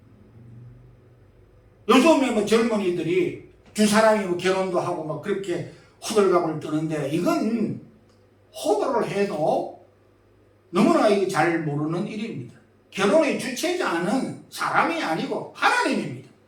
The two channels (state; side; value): identical; both; correlation 1.00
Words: 요즘에 뭐 젊은이들이 두 사람이 뭐 결혼도 하고 막 그렇게 호들갑을 떠는데 이건 호도를 해도 너무나 이거 잘 모르는 일입니다. 결혼의 주체자는 사람이 아니고 하나님입니다.